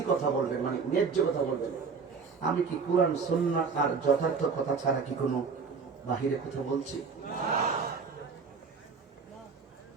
কথা বলবেন, মানে ন্যায্য কথা বলবেন। আমি কি কোরআন সুন্নাহ আর যথার্থ কথা ছাড়া কি কোনো বাহিরে কথা বলছি?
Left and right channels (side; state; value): left; quieter; 5.3 dB